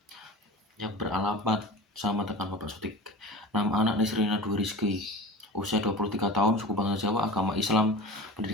Yang beralamat sama dengan Bapak Sodik. Nama anak Nisrina Dwi Rizky, usia 23 tahun, suku bangsa Jawa, agama Islam,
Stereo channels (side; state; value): both; normal; correlation 0.35